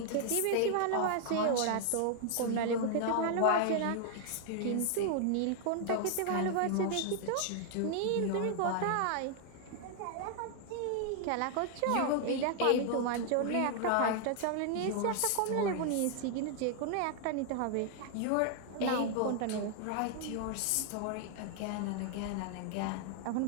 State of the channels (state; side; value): different; both; correlation 0.00